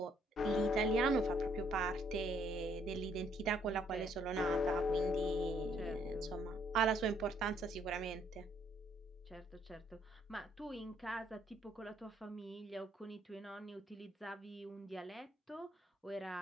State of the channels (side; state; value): both; normal; correlation 0.68